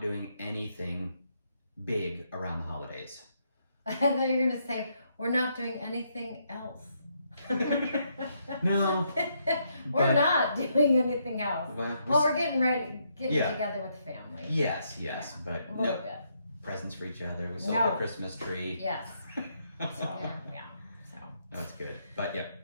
anything big around the holidays. And then you're going to say, we're not doing anything else. No. We're but- not doing anything else. Well, We're getting Yeah. together with family. yes, but A little no bit. presents for each other. We sold No. the Christmas tree. Yes. So, Yeah. yeah. So, That's good. But yep.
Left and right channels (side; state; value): both; inverted; correlation -0.76